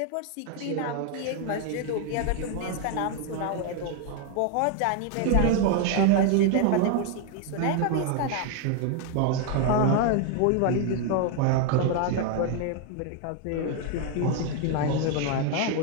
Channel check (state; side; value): different; both; correlation 0.01